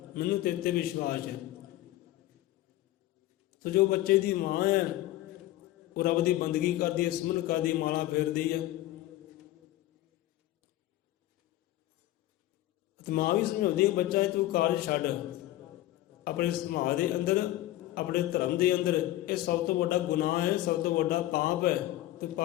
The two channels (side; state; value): right; quieter; 15.4 dB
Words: मैनू तेरे ते विश्वास है। तो जो बच्चे की माँ है वो रब की बंदगी करती है, सिमरन करती, माला फेरती है। तो माँ भी समझाती है बच्चा तू कारज छड्ड, अपने समाज के अंदर, अपने धर्म के अंदर, ये सब तो बड़ा गुनाह है, सब तो बड़ा पाप है। तो